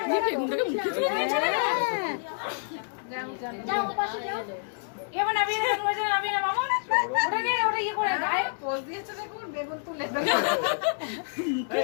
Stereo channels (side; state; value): right; silent; digital silence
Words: বেগুনটাকে মুখে দিয়ে যাও পাশে যাও। এবার নাবি নাবি না মামা। ওটাকে ওটা ইয়ে করে গায়ে পোজ দিয়েছে দেখুন, বেগুন তুলে